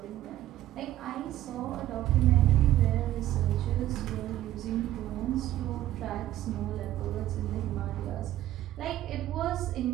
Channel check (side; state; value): left; quieter; 13.6 dB